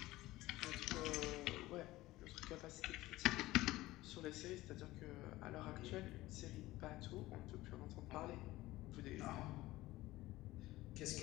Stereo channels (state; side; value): quieter; right; 17.7 dB